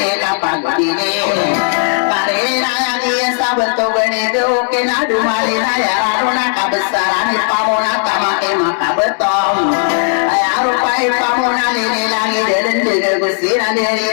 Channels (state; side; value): silent; right; 61 dB below the other